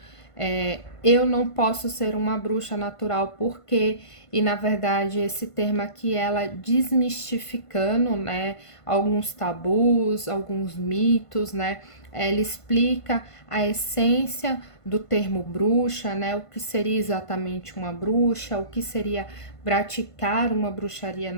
Eu não posso ser uma bruxa natural porque, e na verdade esse termo aqui ela desmistificando, né, alguns tabus, alguns mitos, né, ela explica a essência do termo bruxa, né, o que seria exatamente uma bruxa, o que seria praticar uma bruxaria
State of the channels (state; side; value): late; right; 1.5 ms